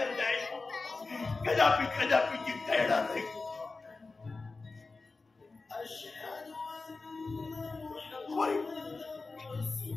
नाही, कदापि जिंकता येणार नाही।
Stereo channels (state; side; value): quieter; right; 3.8 dB